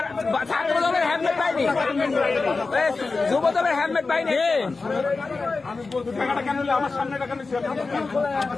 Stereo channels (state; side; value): quieter; right; 4.0 dB